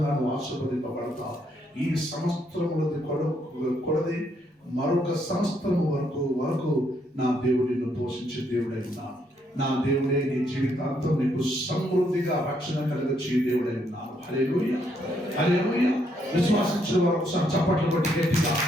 నువ్వు ఆశీర్వదింపబడతావు. ఈ సంవత్సరములది కొలది మరొక సంవత్సరం వరకు నా దేవుడు నిన్ను పోషించే దేవుడై ఉన్నాను. నా దేవుడే నీ జీవితాంతం నీకు సమృద్ధిగా రక్షణ కలిగించే దేవుడై ఉన్నాను. హల్లెలూయా. హల్లెలూయా. విశ్వాసించిన వారు ఒకసారి చప్పట్లు కొట్టి గట్టిగా.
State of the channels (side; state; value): both; normal; correlation 0.73